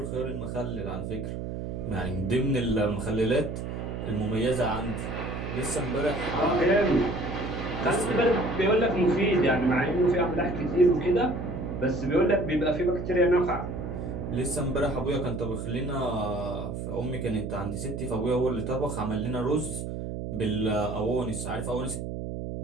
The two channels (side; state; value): right; noise; hum, 5 dB below the sound